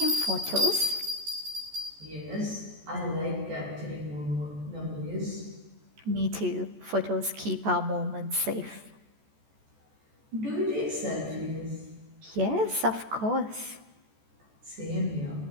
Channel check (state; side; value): late; left; 14 ms